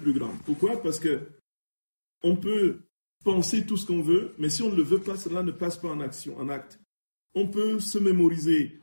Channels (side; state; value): both; inverted; correlation -1.00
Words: grand. Pourquoi? Parce que on peut penser tout ce qu'on veut, mais si on ne le veut pas, cela ne passe pas en action, en acte. On peut se mémoriser,